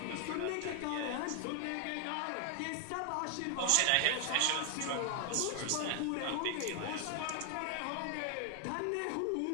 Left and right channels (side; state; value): both; different; correlation 0.00